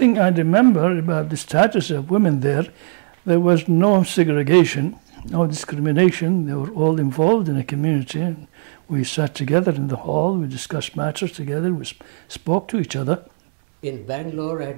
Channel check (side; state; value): left; silent; 66 dB below the other